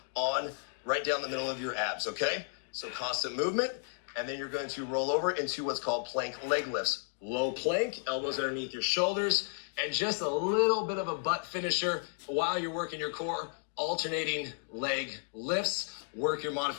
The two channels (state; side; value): silent; right; 56 dB below the other